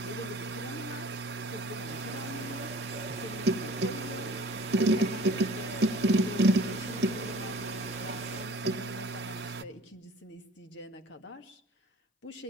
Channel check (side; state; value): both; normal; correlation 0.49